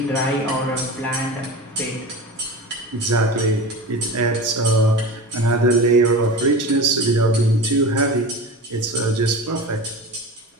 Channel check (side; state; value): both; normal; correlation 0.31